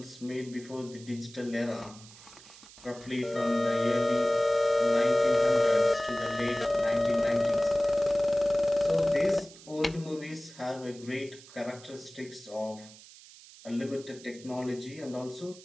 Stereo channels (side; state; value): right; noise; hiss, 20 dB below the sound